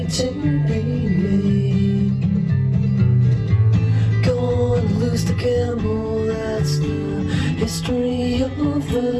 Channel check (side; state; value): both; identical; correlation 1.00